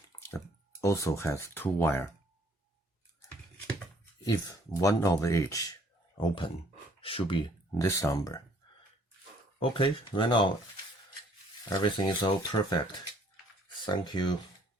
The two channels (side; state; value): both; normal; correlation 0.61